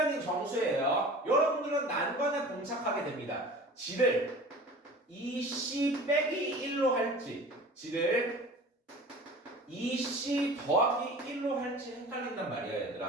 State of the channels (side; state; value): both; normal; correlation 0.40